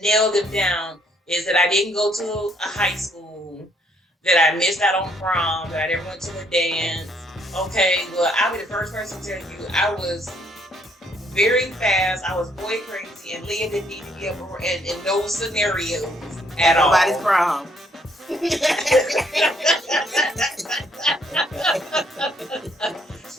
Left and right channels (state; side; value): normal; both; correlation 0.68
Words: nailed it down, is that I didn't go to a high school, that I missed out on prom, that I never went to a dance. Okay, well, I'll be the first person to tell you, I was very fast. I was boy crazy, and Leah didn't need to be up in those scenarios at all. Nobody's prom.